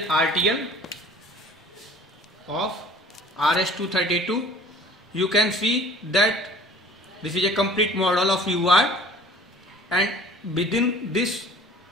RTL of RS-232. You can see that this is a complete model of UART, and within this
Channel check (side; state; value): both; normal; correlation 0.48